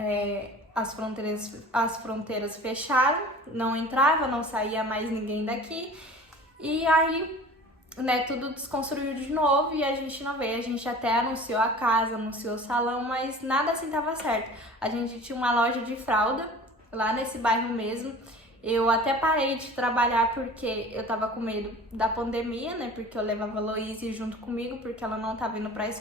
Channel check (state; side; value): normal; both; correlation 0.42